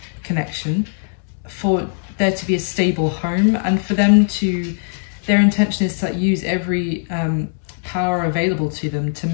connection, for there to be a stable home, and for them to, their intention is to use every power available to them to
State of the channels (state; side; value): silent; right; 66 dB below the other